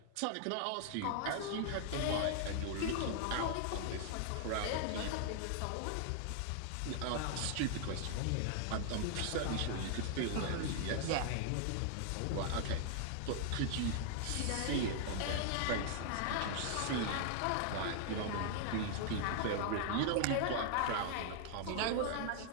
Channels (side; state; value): both; different; correlation 0.00